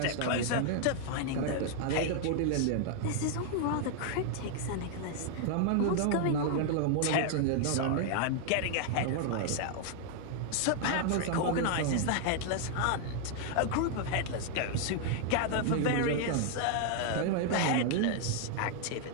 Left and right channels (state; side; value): different; both; correlation 0.00